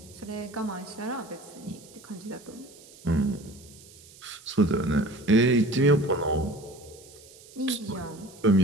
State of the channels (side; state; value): right; noise; hiss, 22 dB below the sound